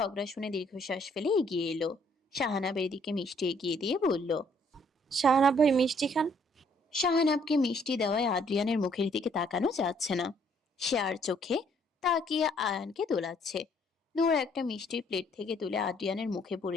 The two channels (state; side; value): normal; both; correlation 0.65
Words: শুনে দীর্ঘশ্বাস ফেলে এগিয়ে এলো। শাহানাবের দিকে মিষ্টি এগিয়ে দিয়ে বলল, শাহনাব ভাই মিষ্টি খান। শাহানাবকে মিষ্টি দেওয়ায় আদ্রিয়ানের মুখের দিকে তাকানো যাচ্ছে না। সে আর চোখে তাকিয়ে আয়ানকে দোলাচ্ছে। নূর একটা মিষ্টির প্লেট থেকে তুলে আদ্রিয়ানের মুখে